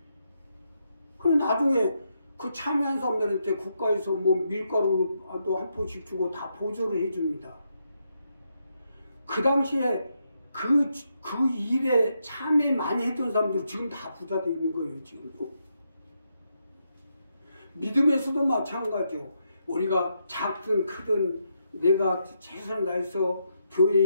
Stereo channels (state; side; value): inverted; both; correlation -0.81